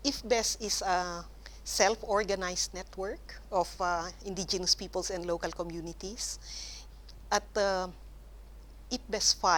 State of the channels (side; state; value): both; identical; correlation 1.00